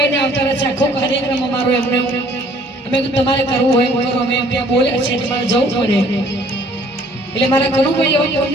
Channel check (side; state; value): both; normal; correlation 0.58